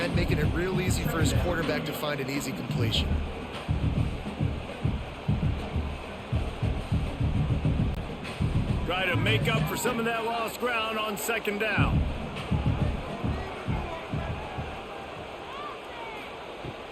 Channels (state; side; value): identical; both; correlation 1.00